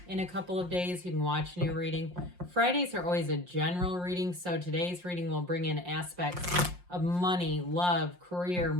in a couple of days. You can watch a new reading. Fridays are always a general reading, so today's reading will bring in aspects of money, love, career,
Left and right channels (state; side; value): late; left; 5.6 ms